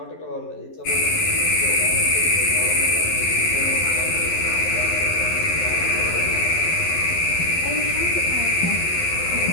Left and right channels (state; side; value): late; right; 11 ms